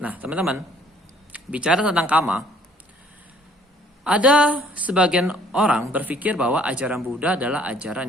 Nah, teman-teman, bicara tentang kama, ada sebagian orang berpikir bahwa ajaran Buddha adalah ajaran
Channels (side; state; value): both; normal; correlation 0.59